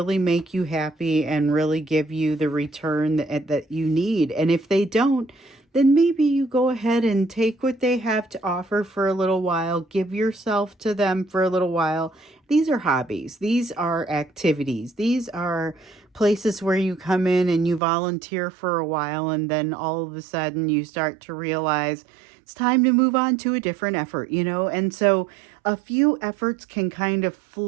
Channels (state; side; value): drops out; left; at 17.8 s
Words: make you happy and really give you the return that you need. And if they don't, then maybe you go ahead and take what they have to offer for a little while, give yourself to them for a little while. These are hobbies. These are activities. These are places where you come in and you volunteer for a while, and then all of a sudden you start to realize it's time to move on to a different effort, And so a few efforts can kind of